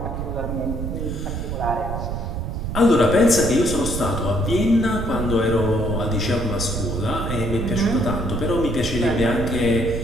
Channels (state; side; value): noise; right; rumble, 4 dB below the sound